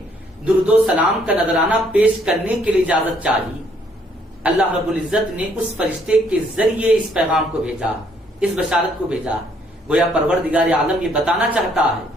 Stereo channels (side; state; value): both; normal; correlation 0.67